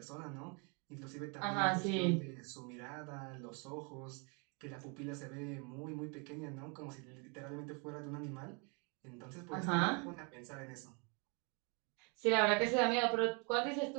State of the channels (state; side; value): quieter; left; 33.1 dB